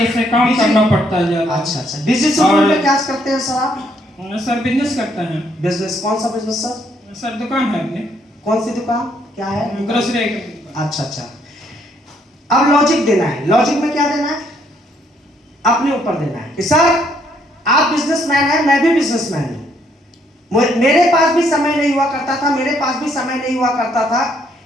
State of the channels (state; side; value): normal; both; correlation 0.70